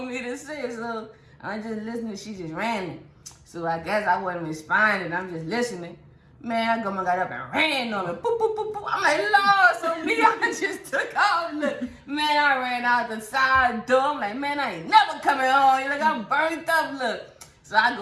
me to say? So I'm just listening. She just ran it. So I guess I wasn't responding. I'm just listening. Man, I got up and ran on her. Boop, boop, boop, boop. I'm like, Lord, so me, I just took off. Look, man, I ran out the side door. I'm like, man, I ain't never coming home. You're like, I'm burnt up, look. So I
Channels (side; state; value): both; identical; correlation 1.00